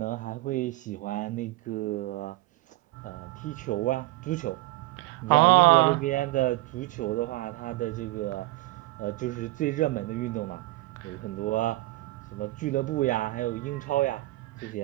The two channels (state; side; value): quieter; left; 19.5 dB